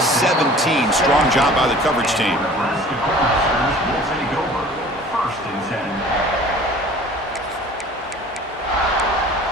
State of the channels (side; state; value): both; normal; correlation 0.46